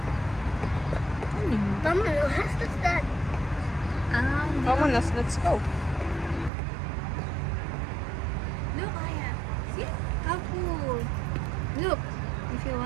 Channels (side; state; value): left; drops out; at 6.5 s